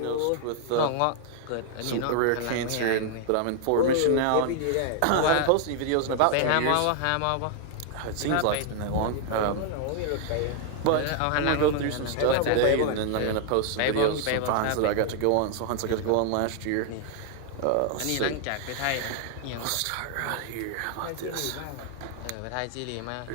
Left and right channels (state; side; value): different; both; correlation 0.00